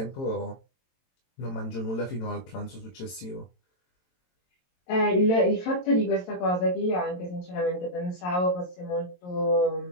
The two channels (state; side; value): late; right; 22 ms